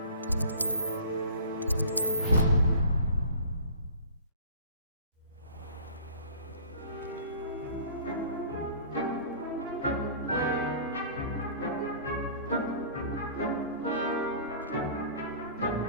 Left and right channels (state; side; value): inverted; both; correlation -0.44